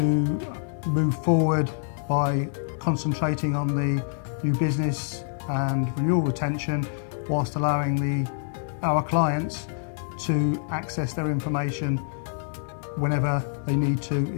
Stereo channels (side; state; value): right; silent; digital silence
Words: move forward by concentrating on the new business and renewal retention whilst allowing our clients to access their information whenever they need to